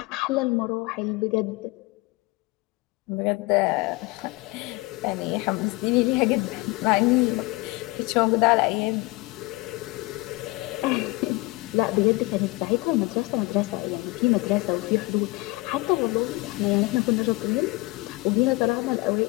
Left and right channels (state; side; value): quieter; right; 23.4 dB